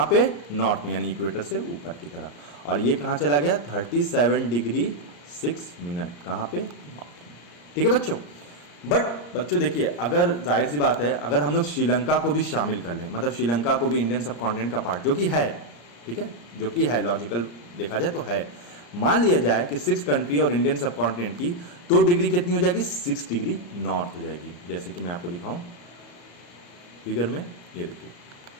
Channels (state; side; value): late; right; 34 ms